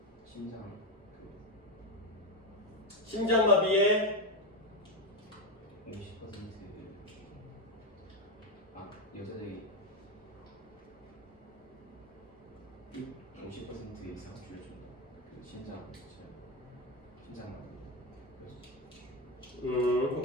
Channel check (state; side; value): normal; both; correlation 0.11